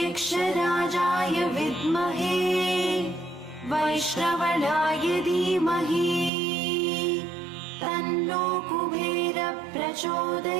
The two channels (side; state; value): left; drops out; at 6.3 s